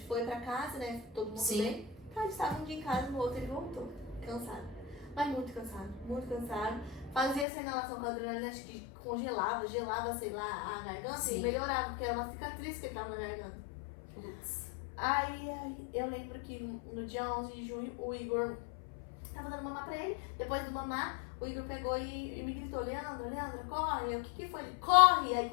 foi pra casa, né? Todo mundo bem. Então, eles estavam um dia em casa, no outro ele voltou. Cansado. Mas muito cansado. Fazia essa inalação com a adrenalina, acho que gelava, sei lá, a garganta e melhorava, porque era uma cicatriz que ele tava na garganta. Aí eu lembro que no dia 11 de junho, o Igor tava dando mamar pra ele. Depois do mamar, o Igor pegou e me gritou, Leandra, corre. O que foi? Ele, corre! Aí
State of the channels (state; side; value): drops out; right; at 7.5 s